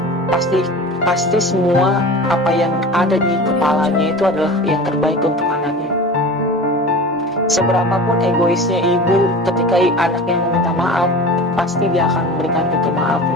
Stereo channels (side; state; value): both; normal; correlation 0.35